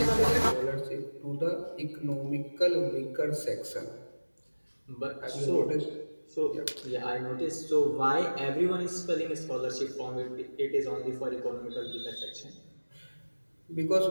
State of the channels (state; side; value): inverted; both; correlation -1.00